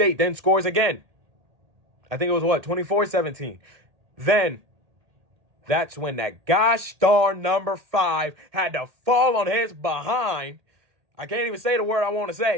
then scores again. I think it was 24-17. Then that's when that gosh darn number 5 had to fall on his behind. I can't even say the word I want to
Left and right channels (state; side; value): late; left; 1.8 ms